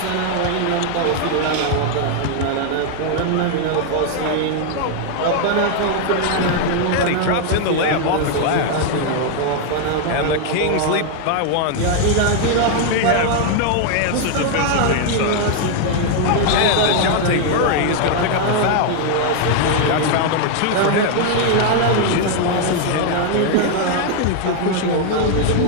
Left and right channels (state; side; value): different; both; correlation 0.00